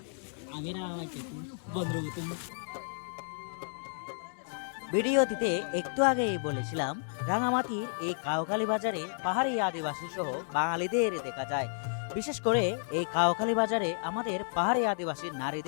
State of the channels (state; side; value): silent; right; digital silence